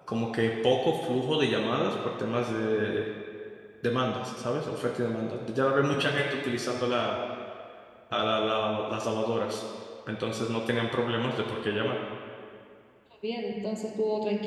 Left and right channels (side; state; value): both; identical; correlation 1.00